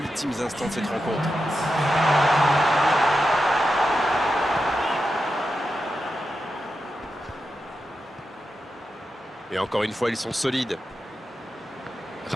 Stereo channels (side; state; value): both; normal; correlation 0.89